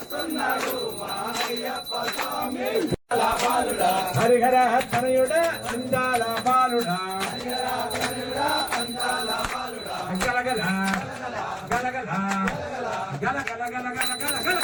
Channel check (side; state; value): both; identical; correlation 1.00